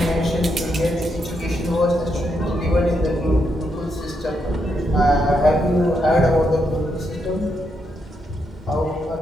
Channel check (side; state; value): both; normal; correlation 0.80